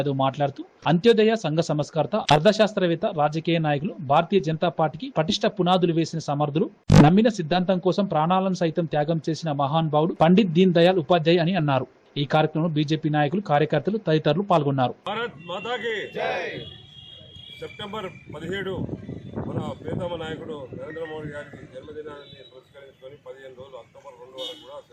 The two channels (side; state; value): both; identical; correlation 1.00